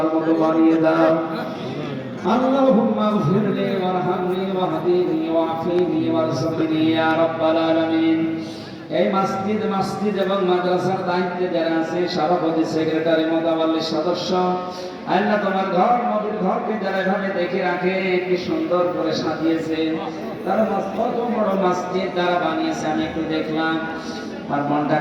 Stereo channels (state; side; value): identical; both; correlation 1.00